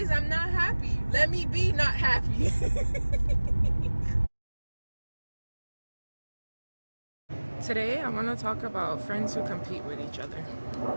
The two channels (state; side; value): inverted; both; correlation -1.00